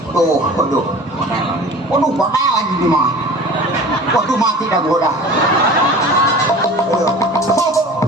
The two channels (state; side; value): normal; both; correlation 0.40